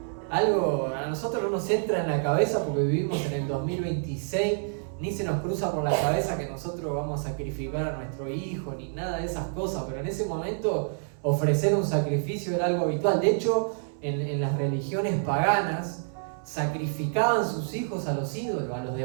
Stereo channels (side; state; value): left; silent; 59 dB below the other